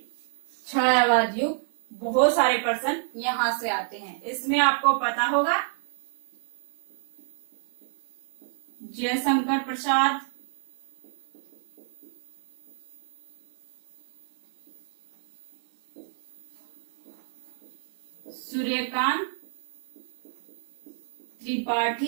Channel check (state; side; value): silent; left; 59 dB below the other